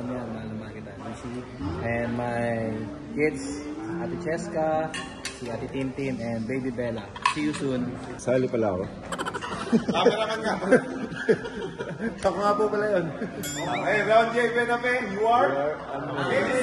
mo yan, mahal kita. Miss you. And my kids, Ate Cheska, si Ate Tintin, and Baby Bella. See you soon. Sali pala ako. Cameraman ka. Ako nga po pala yun. Okay, Ron J. Buenape, you are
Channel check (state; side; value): identical; both; correlation 1.00